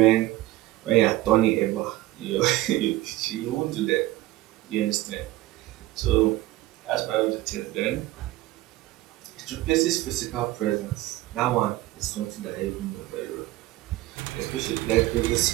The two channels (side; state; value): left; quieter; 17.1 dB